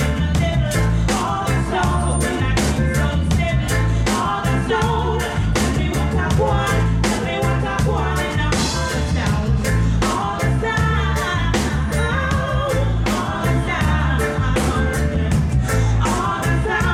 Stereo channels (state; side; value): identical; both; correlation 1.00